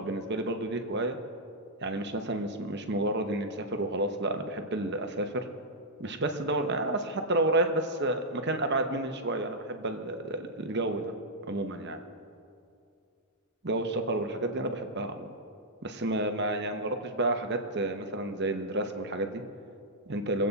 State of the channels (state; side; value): normal; both; correlation -0.07